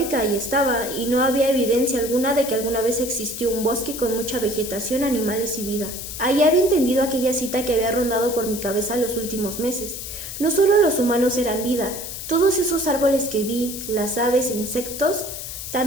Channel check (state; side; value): noise; left; hiss, 8 dB below the sound